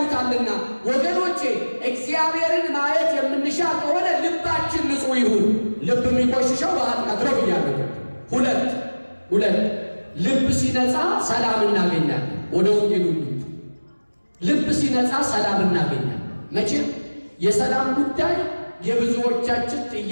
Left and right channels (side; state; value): both; inverted; correlation -1.00